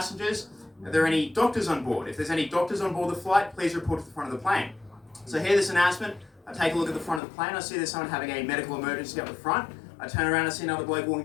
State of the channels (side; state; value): right; drops out; at 7.2 s